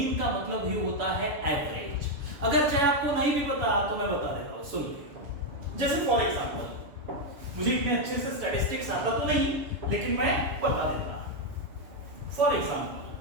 का मतलब ही होता है एवरेज। अगर चाहे आपको नहीं भी पता तो मैं बता देता हूं, सुन लीजिए। जैसे फॉर एग्जांपल, मुझे इतने अच्छे से स्टैटिस्टिक्स आता तो नहीं, लेकिन मैं बता देता। For example,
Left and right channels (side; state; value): left; late; 7.0 ms